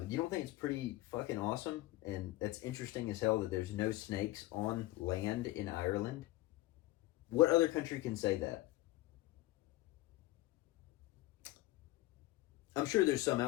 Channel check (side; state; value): right; quieter; 17.9 dB